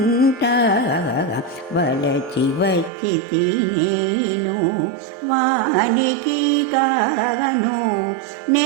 వలచి వచ్చి తినేను వానికి గాను.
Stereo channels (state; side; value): drops out; left; at 2.9 s